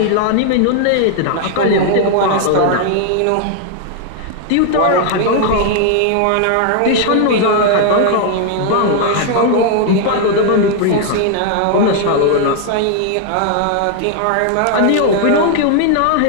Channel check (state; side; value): different; both; correlation 0.00